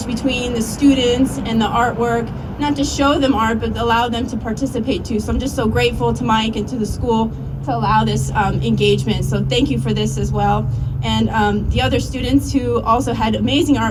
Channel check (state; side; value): identical; both; correlation 1.00